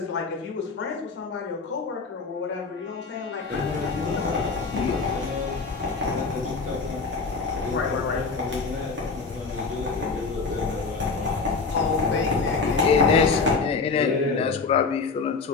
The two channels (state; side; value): quieter; right; 4.4 dB